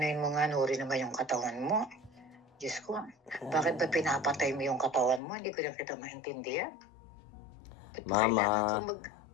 mo nga, Nuri naman yung katawan mo. Diyos ko, bakit ba pinapatay mo yung katawan mo? Hindi ko na kita maintindihan. Ba't ba kailangan kang Mama,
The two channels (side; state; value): right; drops out; at 5.2 s